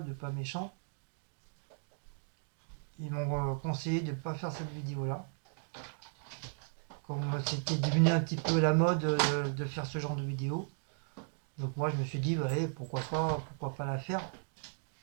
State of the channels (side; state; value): left; silent; 54 dB below the other